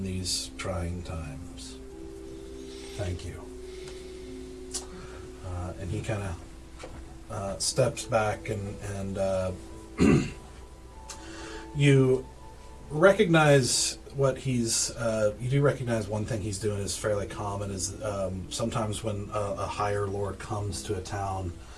these trying times. Thank you. And he kind of steps back, and you recognize what he's. You do recognize one thing he's doing is fairly common. Is sometimes when a higher lord comes to a town,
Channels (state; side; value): identical; both; correlation 1.00